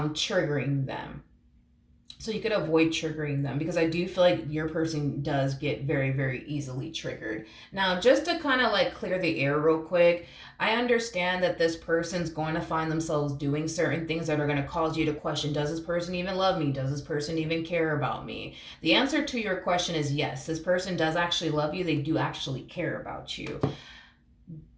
them. So you could avoid triggering them, because I do feel like your person does get very, very easily triggered. Now, just to kind of like clear the air real quick, I understand that this person's going to find themselves doing certain things that are going to cause you to question, does this person even love me? Does this person even care about me? The answer to your question is yes. This person does actually love you. They do actually care about you.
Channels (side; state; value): both; identical; correlation 1.00